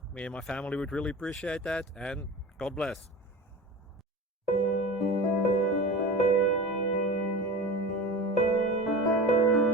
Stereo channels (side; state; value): both; normal; correlation 0.32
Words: Me and my family would really appreciate that, and God bless.